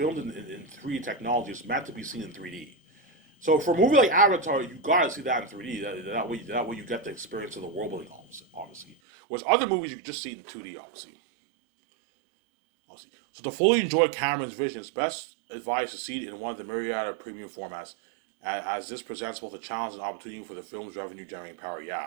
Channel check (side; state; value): left; drops out; at 9.0 s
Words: in 3D technology. It's meant to be seen in 3D. So for a movie like Avatar, you gotta see that in 3D. That way you get the experience of the world building, obviously. Whereas other movies you can just see it in 2D, obviously. So to fully enjoy Cameron's vision, it's best advised to see it in one of the myriad of premium formats, as this presents both a challenge and opportunity for the film's revenue generating power.